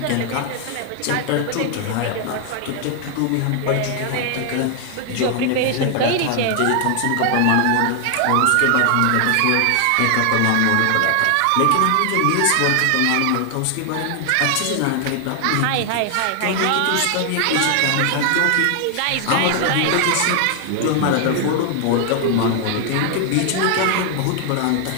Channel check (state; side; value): different; both; correlation 0.00